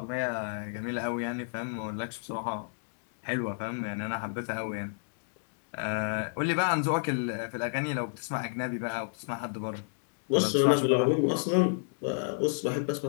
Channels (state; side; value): silent; right; digital silence